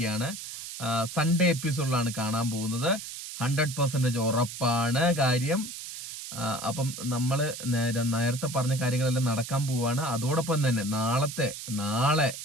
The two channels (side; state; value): right; noise; hiss, 9 dB below the sound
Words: സൺഡേ എപ്പിസോഡിലാണ് കാണാൻ പോകുന്നത്. 100% ഉറപ്പാണ് കാര്യം. അപ്പം നമ്മൾ നേരത്തെ പറഞ്ഞ കാര്യങ്ങളെല്ലാം നടക്കാൻ പോവാണ്. അതോടൊപ്പം തന്നെ നാളെ